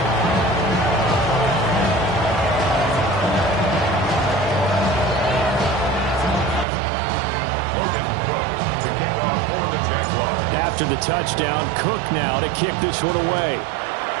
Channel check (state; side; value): drops out; left; at 6.7 s